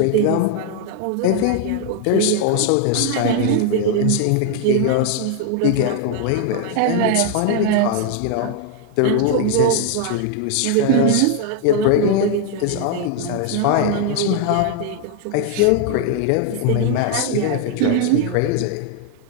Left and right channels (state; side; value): different; both; correlation 0.01